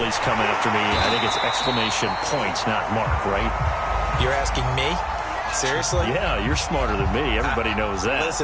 come after me, I think it's exclamation point, not mark, right? You're asking me? Seriously? Yeah, you're smarter than me. Everybody knows that.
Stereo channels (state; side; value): identical; both; correlation 1.00